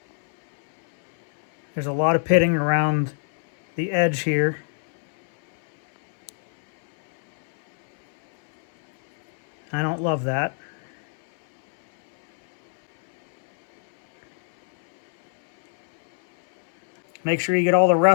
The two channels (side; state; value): right; silent; 65 dB below the other